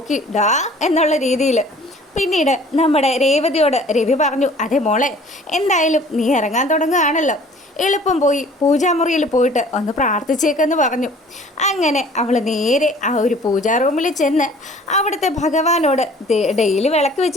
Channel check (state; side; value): normal; both; correlation 0.51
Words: ഡാ എന്നുള്ള രീതിയിൽ. പിന്നീട് നമ്മുടെ രേവതിയോട് രവി പറഞ്ഞു, അതെ മോളെ, എന്തായാലും നീ ഇറങ്ങാൻ തുടങ്ങുകയാണല്ലോ, എളുപ്പം പോയി പൂജാമുറിയിൽ പോയിട്ട് ഒന്ന് പ്രാർത്ഥിച്ചേക്കെന്ന് പറഞ്ഞു. അങ്ങനെ അവൾ നേരെ ആ ഒരു പൂജാ റൂമിൽ ചെന്ന് അവിടുത്തെ ഭഗവാനോട് ഡെയിലി വിളക്ക്